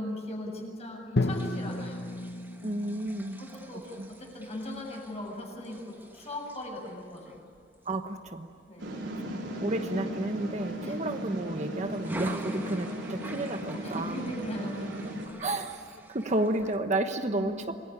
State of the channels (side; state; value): both; normal; correlation 0.54